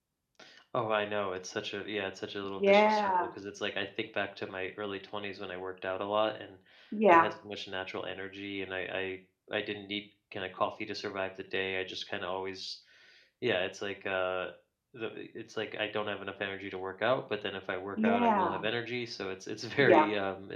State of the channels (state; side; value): identical; both; correlation 1.00